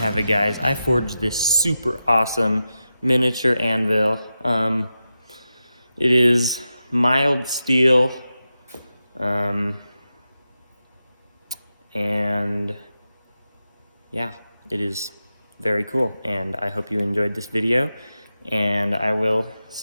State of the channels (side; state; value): both; inverted; correlation -0.90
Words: it, guys. I forged this super awesome miniature anvil. It is mild steel, and yeah, it is very cool. And I hope you enjoyed this video, and I will